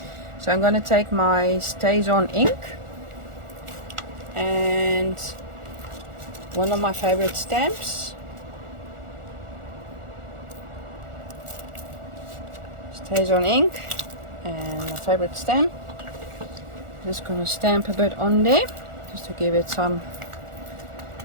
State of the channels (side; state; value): left; late; 1.4 ms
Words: So I'm going to take my Stays On ink and one of my favorite stamps. Stays On ink and my favorite stamp. Just going to stamp a bit on there just to give it some